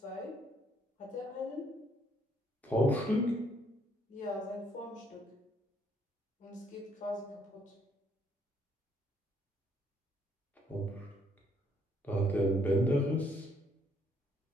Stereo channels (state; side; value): normal; both; correlation 0.68